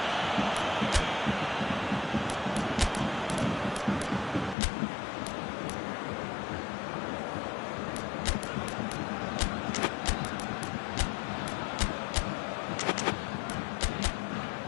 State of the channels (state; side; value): drops out; right; at 4.5 s